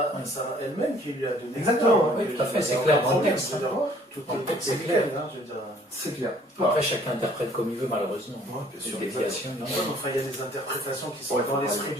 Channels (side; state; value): both; normal; correlation 0.58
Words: elle-même qui lui a donné. Exactement, oui, tout à fait, c'est clair dans le texte. C'est clair. C'est clair. Après, chacun interprète comme il veut, malheureusement. Bien sûr. Il y a des interprétations qui sont dans l'esprit